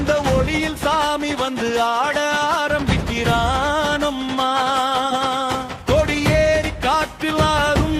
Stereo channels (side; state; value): both; identical; correlation 1.00